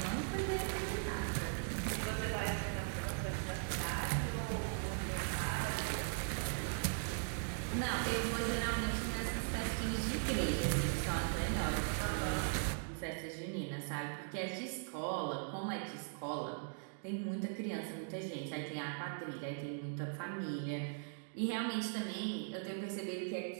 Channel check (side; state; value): left; silent; digital silence